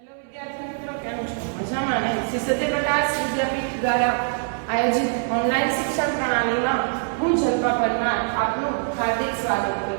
વિદ્યાર્થી મિત્રો, કેમ છો? મજામાં ને? શ્રી સત્યપ્રકાશ વિદ્યાપીઠ દ્વારા આયોજિત ઓનલાઈન શિક્ષણ પ્રણાલીમાં હું જલ્પા પરમાર આપનું હાર્દિક સ્વાગત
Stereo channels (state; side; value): silent; left; 63 dB below the other